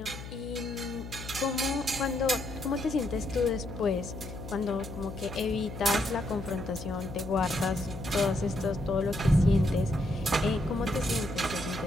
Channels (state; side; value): noise; left; hum, 11 dB below the sound